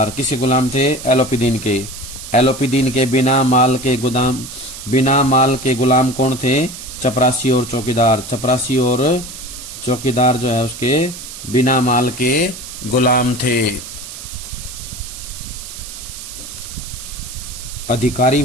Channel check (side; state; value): right; noise; hiss, 12 dB below the sound